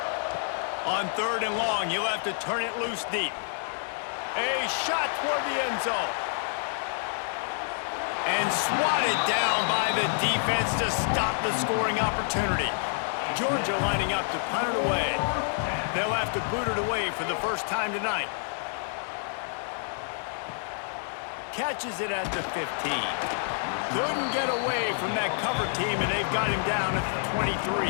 On 3rd and long, you'll have to turn it loose deep. A shot toward the end zone. And swatted down by the defense to stop the scoring opportunity. Georgia lining up to punt it away. They'll have to boot it away for the first time tonight. Catches it at the 15. Couldn't get away from that cover team, and they've got him down at the 23.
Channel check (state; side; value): silent; right; 59 dB below the other